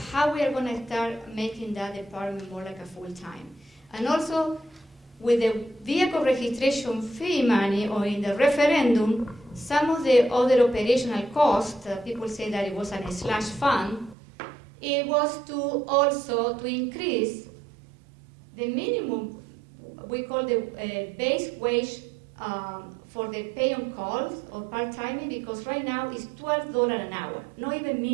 how we are going to start making that department more like a full-time. And also, with the vehicle registration fee money or in the referendum, some of the other operational costs, people say that it was a slash fund, it was to also to increase the minimum, we call the base wage for the pay on calls or part-timing, because right now it's $12 an hour, not even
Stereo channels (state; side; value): drops out; left; at 14.2 s